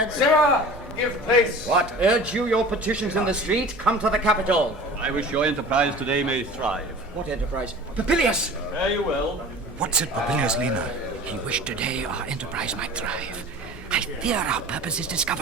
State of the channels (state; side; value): normal; both; correlation 0.40